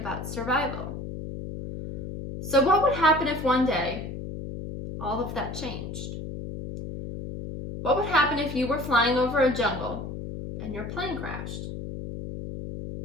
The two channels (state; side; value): noise; left; hum, 8 dB below the sound